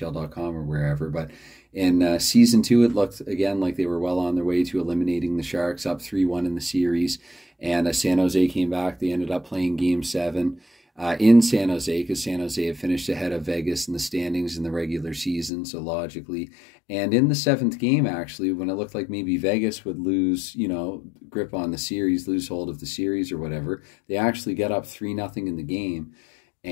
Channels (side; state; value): right; drops out; at 15.5 s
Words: or wherever, but in season 2 it looked again like they were well on their way to eliminating the Sharks, up 3-1 in the series, and San Jose came back. They ended up playing Game 7 in San Jose because San Jose had finished ahead of Vegas in the standings in the regular season, so logically. And in the 7th game, actually, when it looked like maybe Vegas would lose, grip on the series, lose hold of the series or whatever, they actually got up 3-0 in the game.